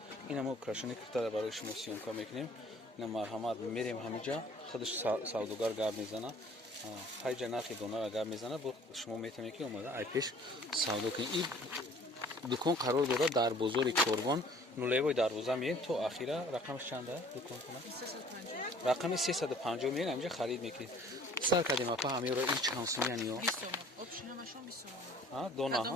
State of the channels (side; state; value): both; normal; correlation 0.53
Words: ина мо украшении киртара барои шумо сиёмка мекунем. Ина марҳамат мерем ҳамиҷа худаш савдогар гап мезана, ҳайҷа нархи донара гап мезана, бо шумо метавонед ки омада ай пеш савдо кунед. Ин дукон қарор дорад дар бозори Корбон, нулевои дарвоза меем то ахира. Рақамш чанда дукон кунад? Рақами 350 меем, ҳамиҷа харид мекунед. Сар кардем апа ҳамеро ин чанд сомиян ё? 20 сом. Обшинамашон 20 сом. Дона